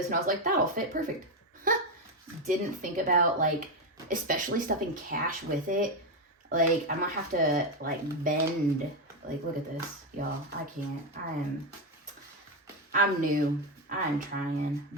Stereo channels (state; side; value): normal; both; correlation 0.08